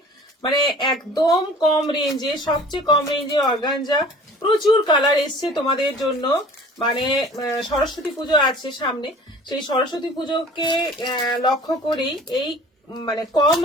মানে একদম কম রেঞ্জে, সবচেয়ে কম রেঞ্জে অর্গানজা। প্রচুর কালার এসছে তোমাদের জন্য। মানে সরস্বতী পুজো আছে সামনে, সেই সরস্বতী পুজোকে লক্ষ্য করেই এই মানে কম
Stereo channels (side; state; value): both; normal; correlation 0.46